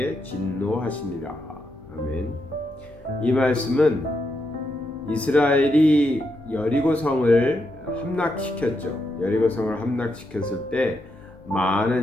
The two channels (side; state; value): left; noise; hum, 26 dB below the sound